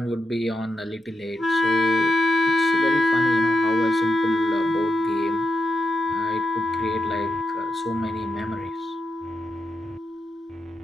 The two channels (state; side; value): normal; both; correlation 0.86